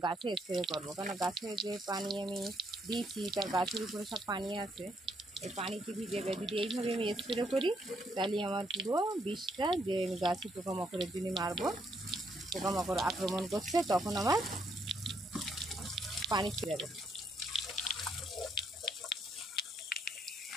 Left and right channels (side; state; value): both; normal; correlation 0.73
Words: গাছে স্প্রে করবো। কারণ গাছে যে পানি আমি দিয়েছি তার গাছের উপরে সব পানি আছে, এই পানিতে ভিজে যদি এইভাবে আমি স্প্রে করি তাহলে আমার পুরো বিষটা যে আমি গাছে পোকামাকড়ের জন্য মারবো, পোকামাকড় আক্রমণ করছে, তখন আমার পানি ছেড়ে যাবে।